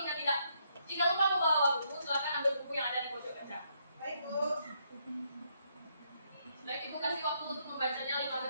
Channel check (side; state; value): both; inverted; correlation -0.74